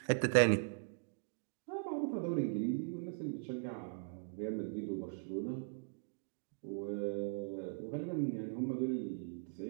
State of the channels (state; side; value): silent; left; digital silence